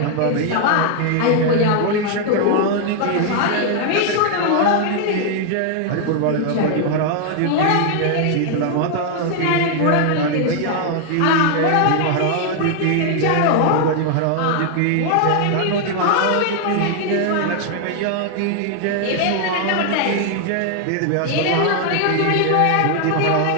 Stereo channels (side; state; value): both; different; correlation 0.00